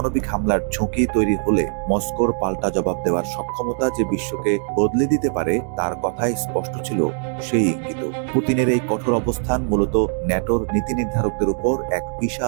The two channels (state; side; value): silent; left; 65 dB below the other